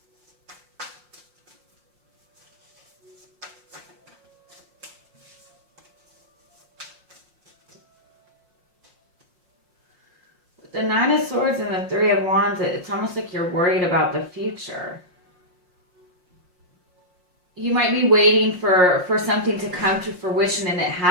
The Nine of Swords and the Three of Wands, it's almost like you're worried about the future. You might be waiting for something to come to fruition and it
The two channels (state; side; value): late; left; 5.6 ms